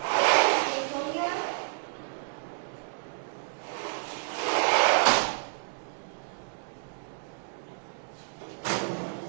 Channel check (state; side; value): silent; left; digital silence